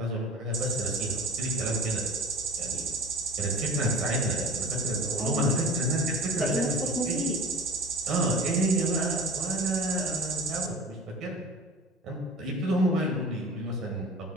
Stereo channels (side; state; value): both; normal; correlation 0.39